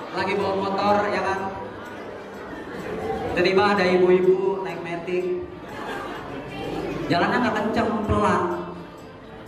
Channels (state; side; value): identical; both; correlation 1.00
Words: lagi bawa motor, ya kan, tiba-tiba ada ibu-ibu naik metik, jalannya nggak kenceng, pelan,